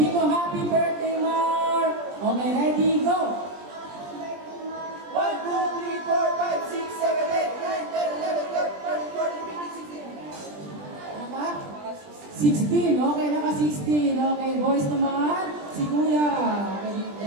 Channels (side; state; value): left; late; 20 ms